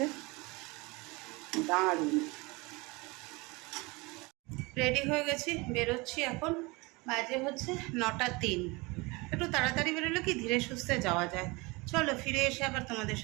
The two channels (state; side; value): quieter; left; 25.2 dB